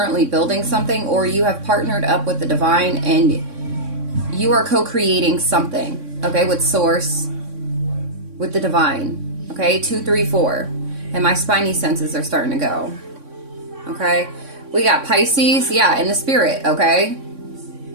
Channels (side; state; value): left; late; 3.6 ms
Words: building something, or you have partnered up with the divine and you are co-creating something, okay, with source, with the divine, okay, 234. And my spiny senses are starting to go, okay. We got Pisces, yeah, in the spirit, okay.